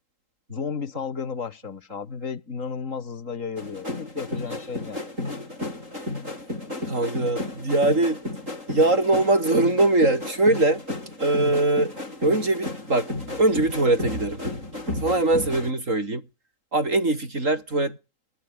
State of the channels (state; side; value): late; left; 3.8 ms